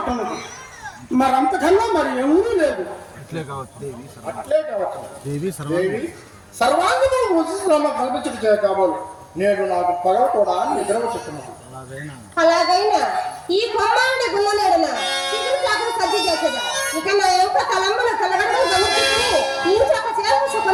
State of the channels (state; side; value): identical; both; correlation 1.00